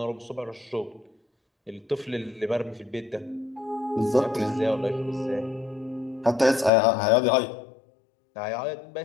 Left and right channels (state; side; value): drops out; right; at 6.7 s